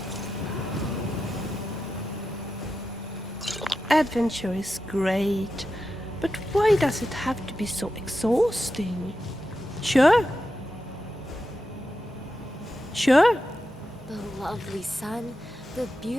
Adventure is great, but why does it have to be so exhausting? Sure. Sure. The lovely sun, the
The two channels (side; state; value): both; normal; correlation 0.90